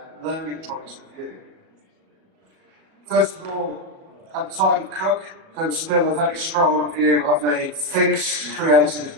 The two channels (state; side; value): late; left; 37 ms